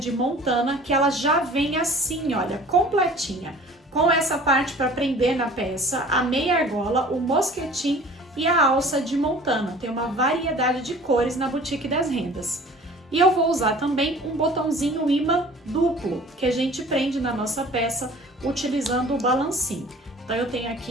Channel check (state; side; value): normal; both; correlation 0.46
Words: Montana, que ela já vem assim, olha, completinha. Com essa parte para prender na peça, a meia argola, o mosquetim e a alça de Montana. Tem uma variedade de cores na Boutique das Rendas. E eu vou usar também um botãozinho imã duplo, que a gente prende na nossa peça utilizando o balancinho. Então eu tenho